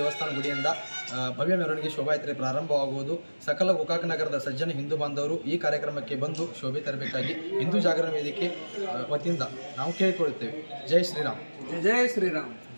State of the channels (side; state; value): both; inverted; correlation -1.00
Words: ಗುಡಿಯಿಂದ ಭವ್ಯ ಮೆರವಣಿಗೆ ಶೋಭಾಯಾತ್ರೆ ಪ್ರಾರಂಭವಾಗುವುದು. ಸಕಲ ಗೋಕಾಕ್ ನಗರದ ಸಜ್ಜನ ಹಿಂದೂ ಬಾಂಧವರು ಈ ಕಾರ್ಯಕ್ರಮಕ್ಕೆ ಬಂದು ಶೋಭೆ ತರಬೇಕಾಗಿ ಹಿಂದೂ ಜಾಗರಣ ವೇದಿಕೆ ವತಿಯಿಂದ ನಾವು ಕೇಳಿಕೊಳ್ಳುತ್ತೇವೆ. ಜೈ ಶ್ರೀರಾಮ್. ಜೈ ಶ್ರೀರಾಮ್.